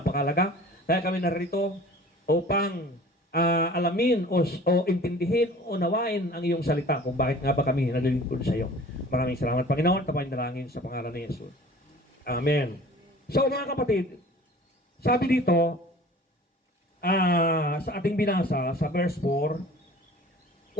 Kaya kami narito upang alamin o intindihin o nawain ang iyong salita kung bakit nga ba kami nalilingkod sa iyo. Maraming salamat, Panginoon. Tapain dalangin sa pangalan ni Jesus. Amen. So, mga kapatid, sabi dito, sa ating binasa, sa verse 4,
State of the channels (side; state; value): both; normal; correlation 0.45